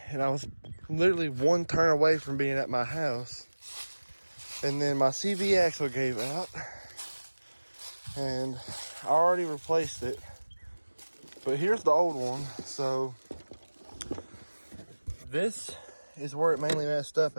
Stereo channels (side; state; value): both; inverted; correlation -1.00